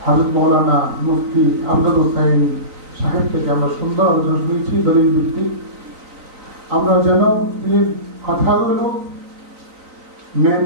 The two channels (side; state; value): left; late; 3.9 ms